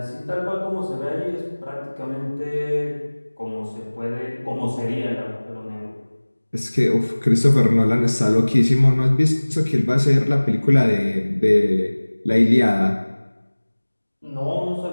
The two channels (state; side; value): inverted; both; correlation -1.00